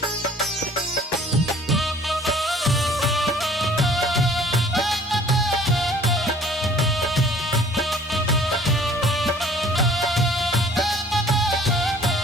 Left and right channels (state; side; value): normal; both; correlation 0.53